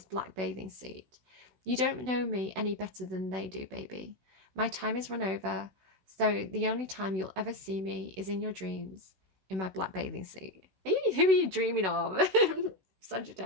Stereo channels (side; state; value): left; late; 16 ms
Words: black bathing suit. You don't know me any better than they do, baby. My time is run over. So the only time you'll ever see me is in your dreams, in my black bathing suit. Who are you dreaming of?